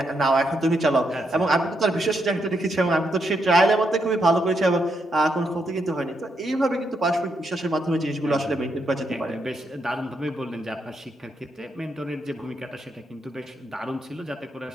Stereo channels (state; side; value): normal; both; correlation 0.79